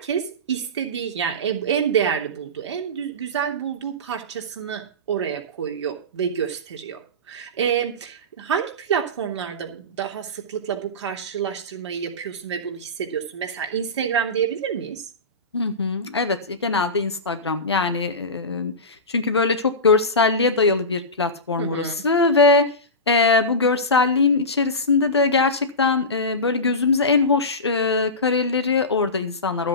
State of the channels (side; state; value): both; normal; correlation -0.20